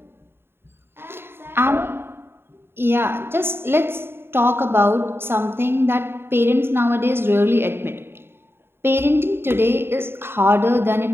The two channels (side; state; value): left; late; 0.11 ms